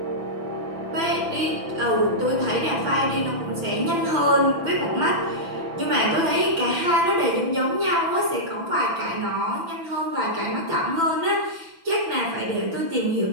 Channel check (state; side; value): late; left; 6.0 ms